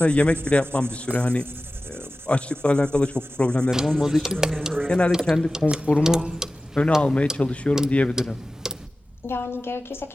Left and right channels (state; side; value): normal; both; correlation 0.96